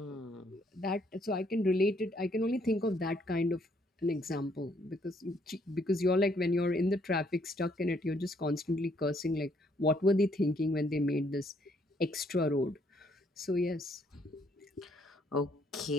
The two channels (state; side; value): normal; both; correlation 0.68